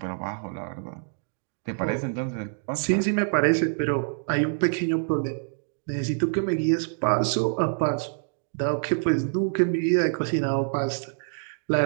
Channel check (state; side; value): silent; left; digital silence